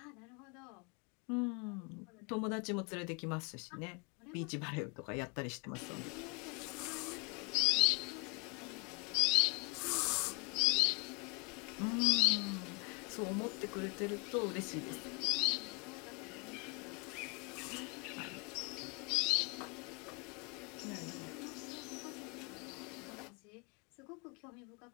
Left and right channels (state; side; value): quieter; right; 30.0 dB